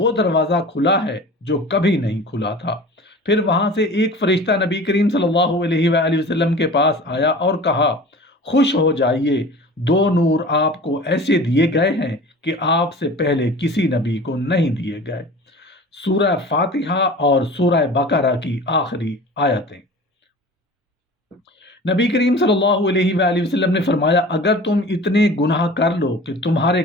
دروازہ کھلا ہے جو کبھی نہیں کھلا تھا۔ پھر وہاں سے ایک فرشتہ نبی کریم صلی اللہ علیہ وآلہ وسلم کے پاس آیا اور کہا، خوش ہو جائیے، 2 نور آپ کو ایسے دیے گئے ہیں کہ آپ سے پہلے کسی نبی کو نہیں دیے گئے۔ سورہ فاتحہ اور سورہ بقرہ کی آخری آیتیں۔ نبی کریم صلی اللہ علیہ وآلہ وسلم نے فرمایا، اگر تم اتنے گناہ کر لو کہ تمہارے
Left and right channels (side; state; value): both; normal; correlation 0.40